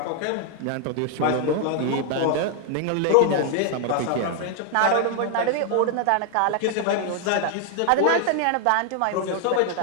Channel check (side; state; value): both; different; correlation 0.00